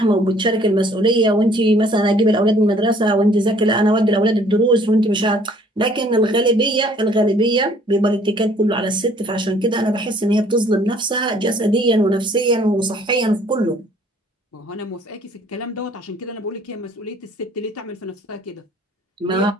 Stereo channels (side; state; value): both; normal; correlation 0.58